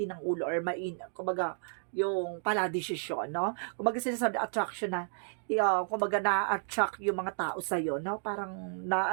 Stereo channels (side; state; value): left; silent; digital silence